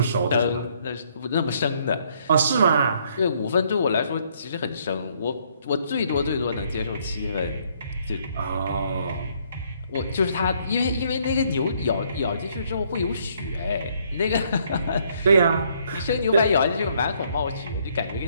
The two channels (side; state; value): both; inverted; correlation -0.67